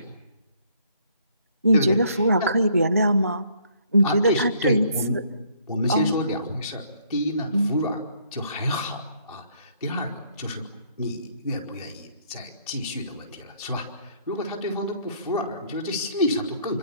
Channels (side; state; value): both; inverted; correlation -0.65